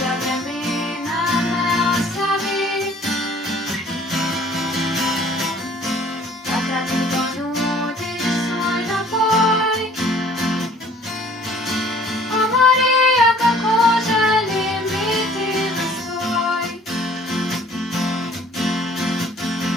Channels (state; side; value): normal; both; correlation 0.54